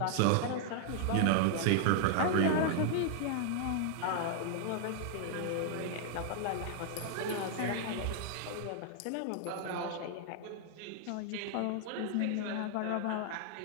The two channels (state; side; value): different; both; correlation 0.00